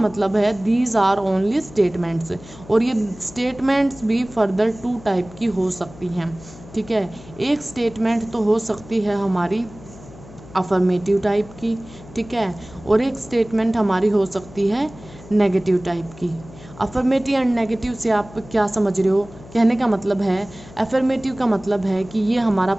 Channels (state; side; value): noise; left; hum, 19 dB below the sound